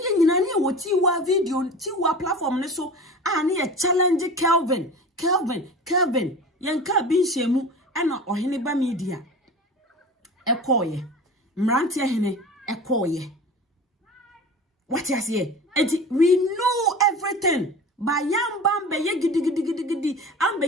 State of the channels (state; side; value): normal; both; correlation 0.35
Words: nyina ne wo tiwa video tiwa platform ne so ne ye challenge Kelvin yanka bi nhemu na ohene ba media ekoye mrante hene ekoye what you say we know everything ba yamba mbe ye gidi ambe